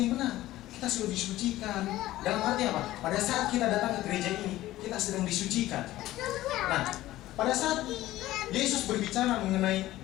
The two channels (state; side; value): quieter; right; 15.7 dB